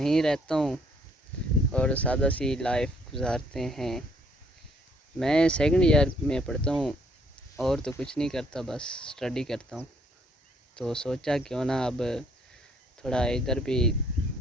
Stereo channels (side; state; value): both; normal; correlation 0.65